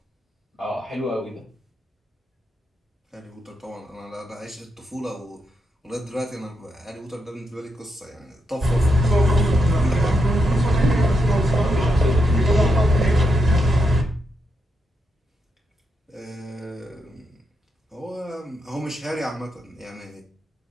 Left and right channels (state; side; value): normal; both; correlation 0.83